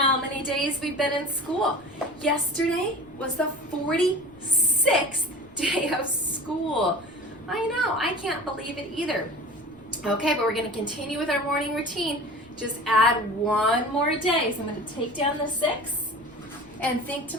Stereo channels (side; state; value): right; noise; rumble, 26 dB below the sound